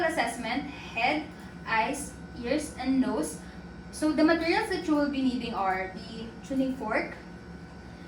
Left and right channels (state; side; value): identical; both; correlation 1.00